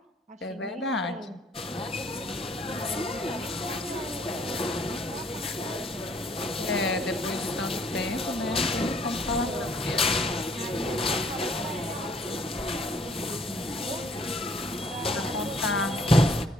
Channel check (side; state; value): both; normal; correlation 0.61